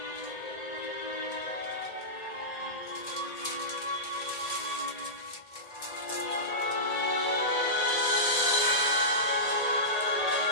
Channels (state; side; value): late; right; 1.8 ms